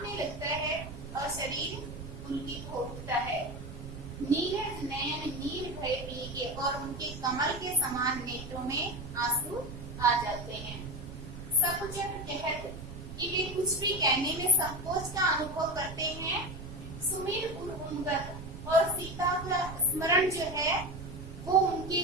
लगता है और शरीर पुलकित हो उठता है। नीरज नयन नीर भय पीके और उनके कमल के समान नेत्रों में आंसू आ जाते हैं। सकुचत कहत कि वे कुछ भी कहने में संकोच का अनुभव करते हैं। सुमिर उन्गत और सीता का स्मरण जो है वो उनके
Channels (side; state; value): right; noise; rumble, 10 dB below the sound